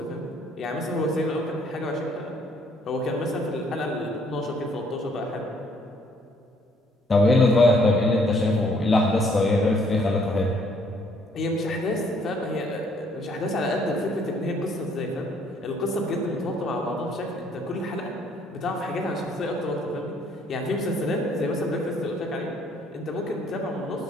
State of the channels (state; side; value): normal; both; correlation 0.64